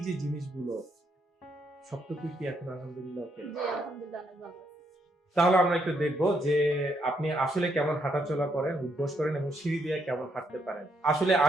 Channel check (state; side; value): normal; both; correlation 0.75